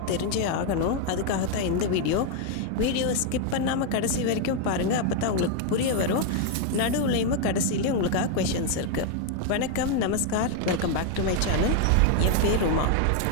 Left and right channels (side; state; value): both; different; correlation 0.01